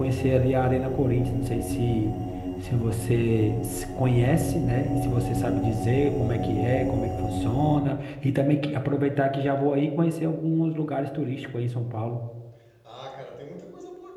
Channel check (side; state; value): both; identical; correlation 1.00